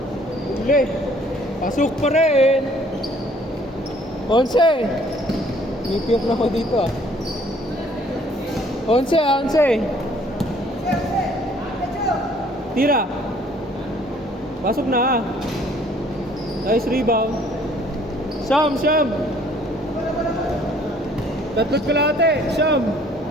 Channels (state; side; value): normal; both; correlation 0.59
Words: Uli. Pasok pa rin. 11. Nipiyok na ako dito ah. 11. Tira. Pasok na ah. Nice rebound. Syam. 3 kalahati. Syam.